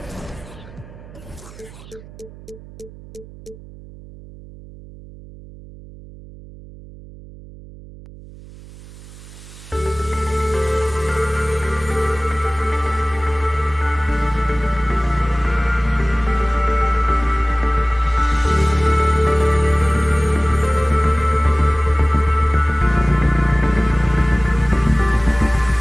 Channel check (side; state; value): right; noise; hum, 18 dB below the sound